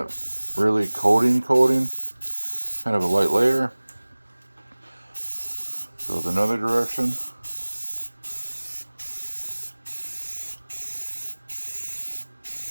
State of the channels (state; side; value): inverted; both; correlation -1.00